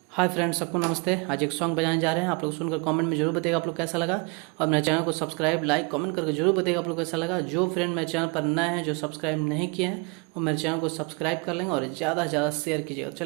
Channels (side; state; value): left; quieter; 29.7 dB